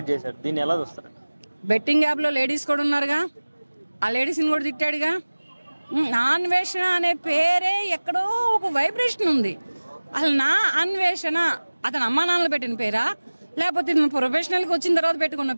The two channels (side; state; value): both; inverted; correlation -1.00